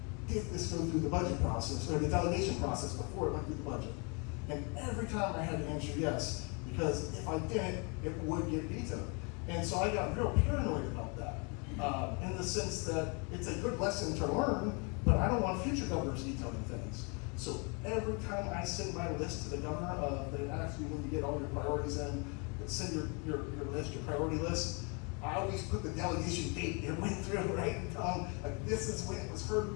did this go through the budget process, or the delegation process before it went through the budget? And every time I had to answer yes, because if I didn't, it would get vetoed. And so I got real paranoid about that, in the sense that it's a good lesson to learn, but I don't want future governors vetoing things. So every time I send my list to the governor, they ask you when you get all your priorities in, send your list, your priority list. I always put the delegation date it went through, right? And tell them, like, this is when it was heard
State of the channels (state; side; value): quieter; right; 33.3 dB